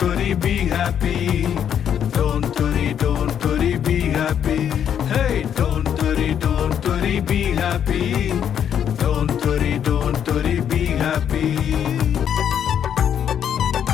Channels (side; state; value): right; quieter; 9.0 dB